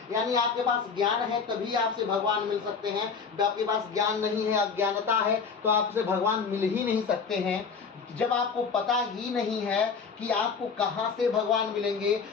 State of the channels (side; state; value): right; quieter; 5.6 dB